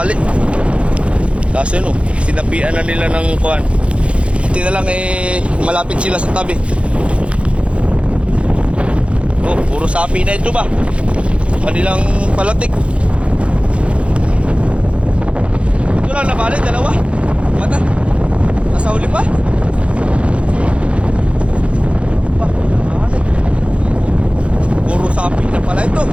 Kasi no, sinapian na nila ng kuwan. Hindi na lang eh, malapit sila sa tabi. Oh, puro sapi na ito ba? Kanilang palatik. Ito lang nabalik, dalawa. Mata, nasa huli pa. Puro sapi na pala ito.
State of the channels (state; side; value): late; left; 0.060 ms